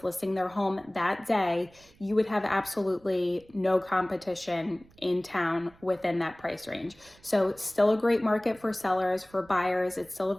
listing their home that day, you would have absolutely no competition in town within that price range. So it's still a great market for sellers, for buyers. It's still a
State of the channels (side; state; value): right; noise; rumble, 27 dB below the sound